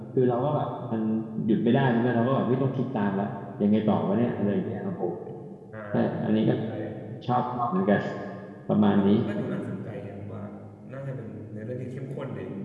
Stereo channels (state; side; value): identical; both; correlation 1.00